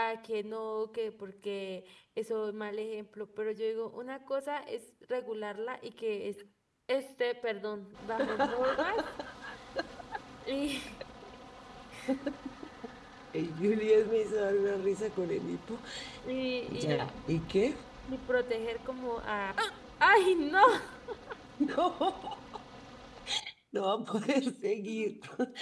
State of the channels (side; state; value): both; identical; correlation 1.00